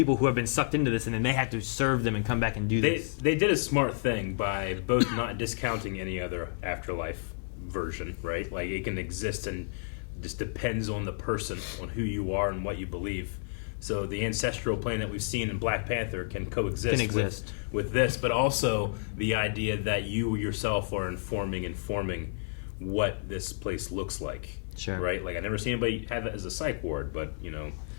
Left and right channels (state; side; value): silent; right; digital silence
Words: who have been sucked into this, and then they had to serve them and come back and do this. They did a smart thing by both not discounting any other afterlife version, right? Like it can exist and just depends on the person, on who you are and what you believe. So the ancestral plane that we've seen in Black Panther can coexist with this, but also the idea that you yourself are informing what this place looks like. Sure. Right? Like I never seen anybody have it as a psych ward, but